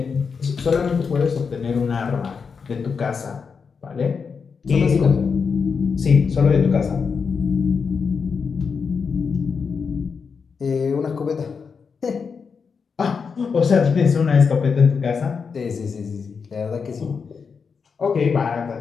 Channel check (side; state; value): right; quieter; 5.6 dB